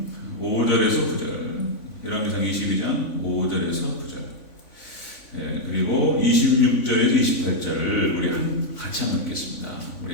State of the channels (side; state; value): right; late; 3.5 ms